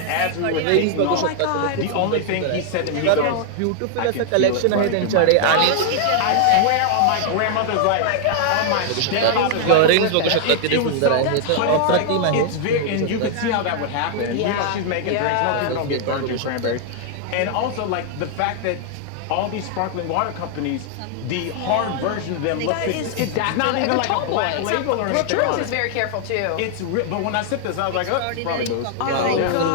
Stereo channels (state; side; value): different; both; correlation 0.00